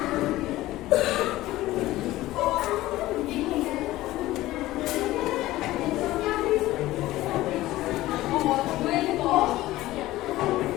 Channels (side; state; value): right; quieter; 16.6 dB